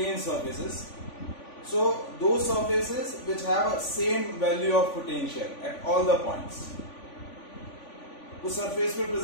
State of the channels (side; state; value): right; late; 3.5 ms